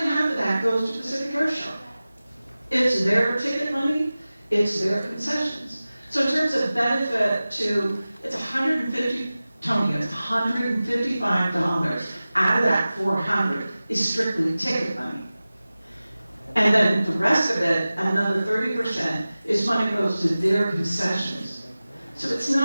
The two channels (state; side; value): inverted; both; correlation -0.97